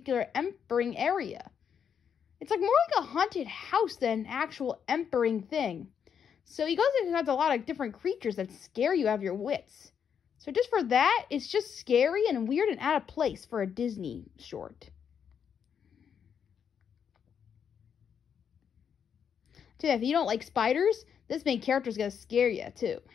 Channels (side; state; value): right; quieter; 7.6 dB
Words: empering area. It's more like a haunted house than an actual empering thing. So he goes and has a lot of different creatures that scare you out of your wits. So just for that, it's just scary and weird and out of place for a Disney short. So if you don't like spiders, this main character is going to scare you too.